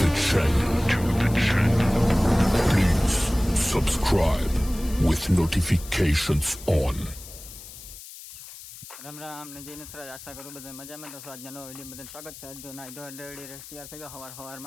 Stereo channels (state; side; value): noise; left; hiss, 15 dB below the sound